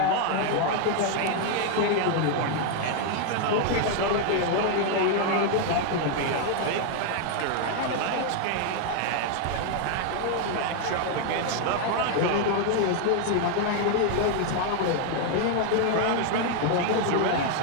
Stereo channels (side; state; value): both; different; correlation 0.00